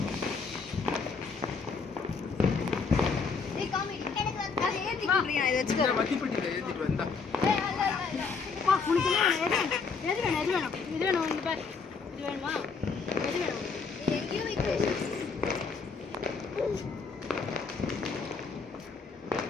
ஏய் காமி எனக்கு வந்து ஏத்தி குடுறீங்க இத இந்த வெச்சுக்கோ. மத்திப்பட்டில ஏத்திட்டு வந்தா. ஏய் அல்ல அல்ல பா உனக்கு எது வேணும் இது வேணும் இங்க பாரு. இது வேணுமா எது வேணும் எங்கேயோ வைக்கிறேன்.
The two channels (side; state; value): right; quieter; 5.0 dB